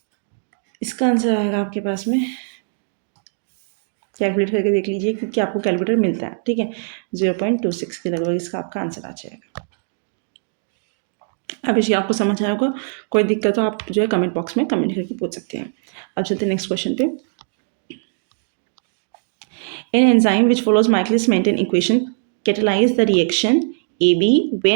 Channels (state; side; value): silent; left; digital silence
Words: इसका आंसर आएगा आपके पास में, कैलकुलेट करके देख लीजिए क्योंकि आपको कैलकुलेटर मिलता है, ठीक है, 0.26 के लगभग इसका आपका आंसर आ जाएगा। अब इसे आपको समझ आया होगा, कोई दिक्कत हो आप जो है कमेंट बॉक्स में कमेंट करके पूछ सकते हैं। अब चलते हैं नेक्स्ट क्वेश्चन पे। An enzyme which follows Michaelis-Menten equation catalyze the reaction AB